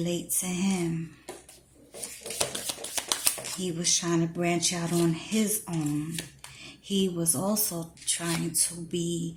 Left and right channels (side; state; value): both; identical; correlation 1.00